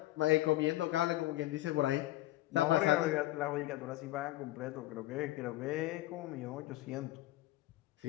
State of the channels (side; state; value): right; quieter; 16.9 dB